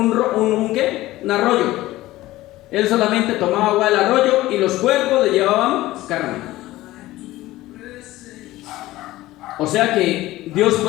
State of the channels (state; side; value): quieter; right; 17.0 dB